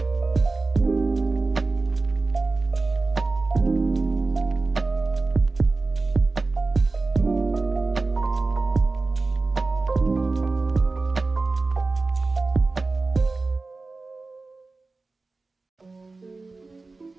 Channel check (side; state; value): left; quieter; 3.6 dB